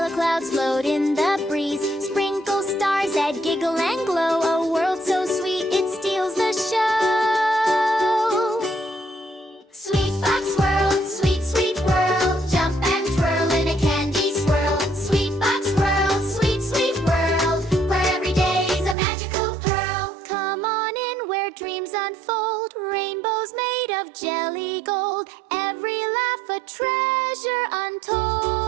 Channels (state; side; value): drops out; left; at 18.9 s